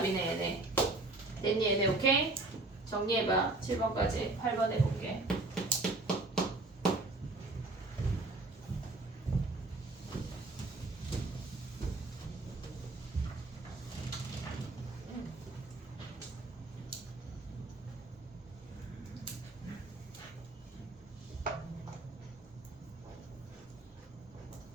얘네. 됐니 얘네? 오케이? 정리해봐. 7번까지 8번 해볼게.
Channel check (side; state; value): left; quieter; 3.0 dB